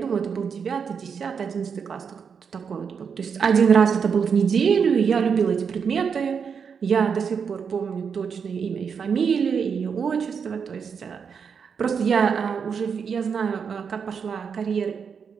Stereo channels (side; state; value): left; quieter; 6.4 dB